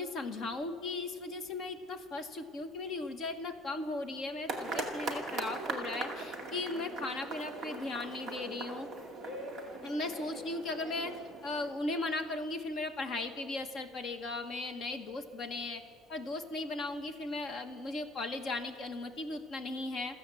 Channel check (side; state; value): both; normal; correlation 0.53